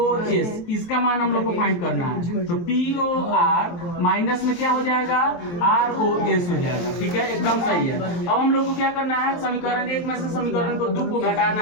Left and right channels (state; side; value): late; right; 23 ms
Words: इसका मान हम लोग को फाइंड करना है। तो POR माइनस में क्या हो जाएगा, ROS हो जाएगा। ठीक है, एकदम सही है। अब हम लोग को क्या करना है, समीकरण 1 में से समीकरण को 2 को घटाना